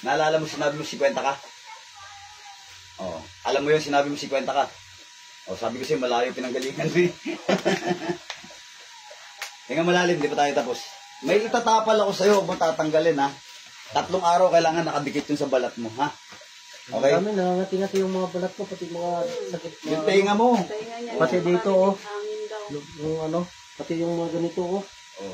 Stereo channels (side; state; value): both; identical; correlation 1.00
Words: Naalala mo sinabi mo 50 ka? Oo. Alam mo yun, sinabi mo 50 ka? O, sabi ko sa'yo, malayo pinanggalingan mo eh. Tingnan malalim, di pa tayo tapos. May itatapal ako sa'yo, huwag mo tatanggalin ha. 3 araw kailangan nakadikit yun sa balat mo ha. Okay? Kami nangangati-ngati yung mga balat ko, pati mga sakit. Yung tenga mo. Pati dito oh. Yung ano, pati yung mga ganito oh.